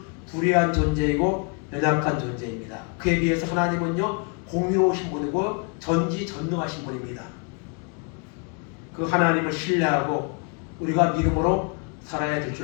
불의한 존재이고 연약한 존재입니다. 그에 비해서 하나님은요, 공의로우신 분이고 전지전능하신 분입니다. 그 하나님을 신뢰하고 우리가 믿음으로 살아야 될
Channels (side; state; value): right; quieter; 36.1 dB